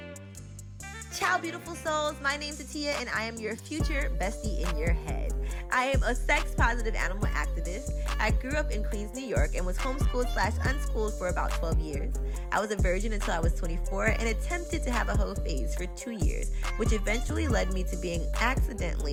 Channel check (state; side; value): identical; both; correlation 1.00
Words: Ciao, beautiful souls. My name's Atiya, and I am your future bestie in your head. I am a sex-positive animal activist. I grew up in Queens, New York, and was homeschooled/unschooled for about 12 years. I was a virgin until I was 24 and attempted to have a hoe phase for 2 years, which eventually led me to being